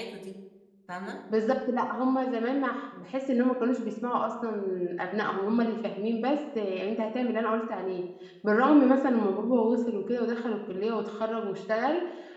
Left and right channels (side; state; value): both; identical; correlation 1.00